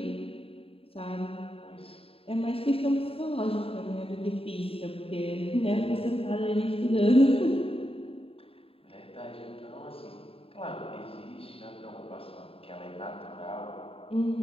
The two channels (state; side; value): late; right; 0.27 ms